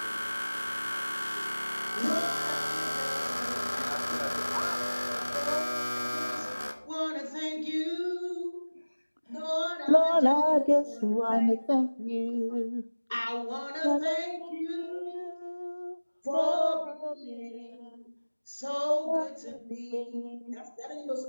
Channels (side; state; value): both; inverted; correlation -1.00